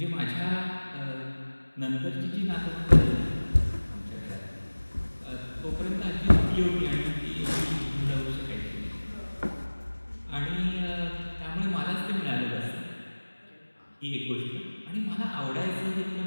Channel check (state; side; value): inverted; both; correlation -1.00